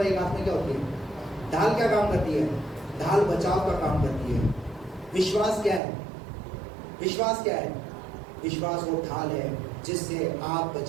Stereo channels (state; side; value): drops out; left; at 5.8 s